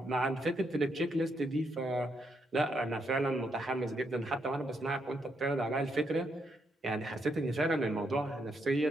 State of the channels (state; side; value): normal; both; correlation 0.78